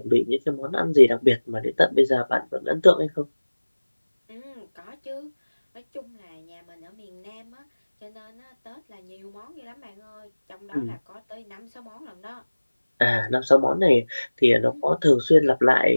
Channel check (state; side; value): inverted; both; correlation -1.00